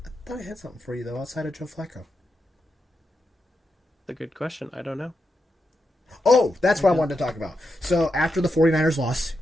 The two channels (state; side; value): normal; both; correlation 0.86